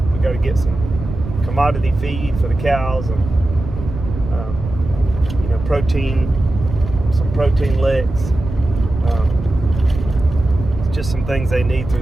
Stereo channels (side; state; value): right; noise; rumble, 8 dB below the sound